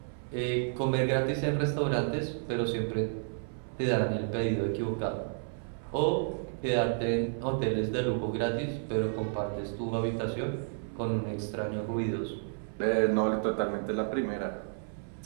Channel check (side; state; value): left; silent; 57 dB below the other